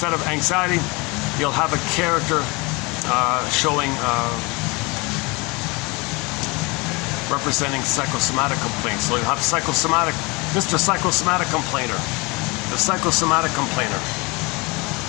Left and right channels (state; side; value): quieter; right; 26.6 dB